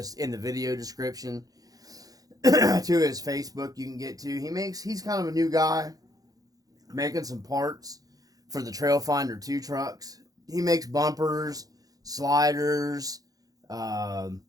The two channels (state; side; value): late; left; 0.18 ms